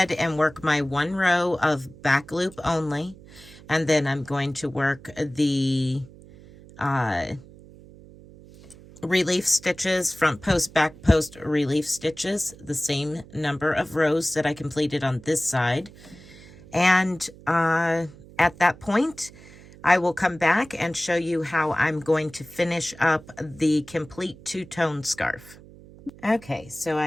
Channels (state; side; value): noise; right; hum, 21 dB below the sound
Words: and work my 1 row of back loop only, and then I'm going to work the relief stitches, front post, back post relief stitches, the same number of rows that I completed on this side. And at that point, I will come back and show you how I'm going to finish up the complete two-tone scarf. Okay, so